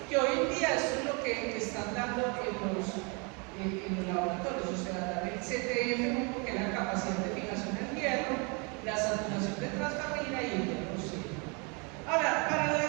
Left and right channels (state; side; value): quieter; left; 32.5 dB